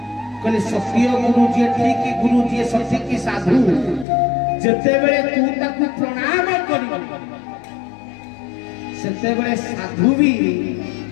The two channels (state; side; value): drops out; right; at 4.0 s